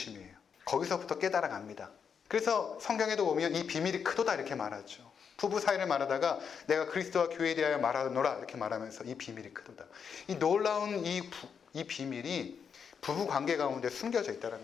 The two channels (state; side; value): quieter; right; 6.8 dB